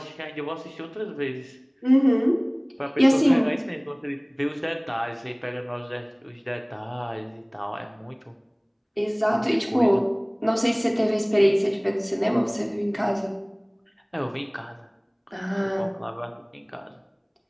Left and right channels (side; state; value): both; identical; correlation 1.00